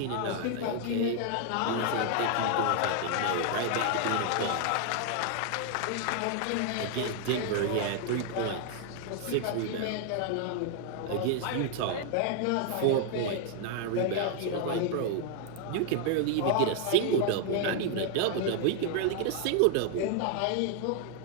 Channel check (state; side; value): different; both; correlation 0.00